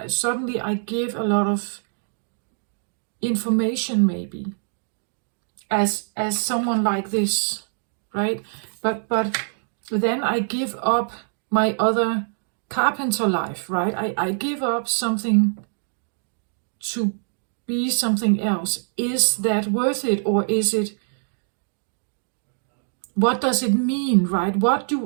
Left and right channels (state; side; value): silent; left; digital silence